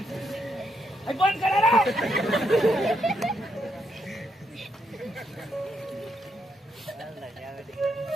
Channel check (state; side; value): normal; both; correlation 0.78